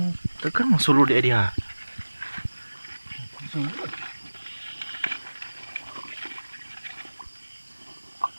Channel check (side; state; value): both; inverted; correlation -1.00